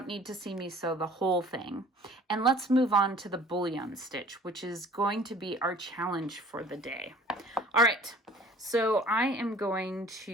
need to see me sew the whole thing. And let's move on to the bullion stitch, which is going to be our challenge for the day. All right. So I am going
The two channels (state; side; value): normal; both; correlation 0.49